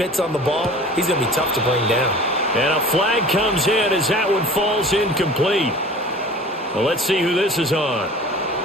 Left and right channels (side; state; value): both; normal; correlation 0.42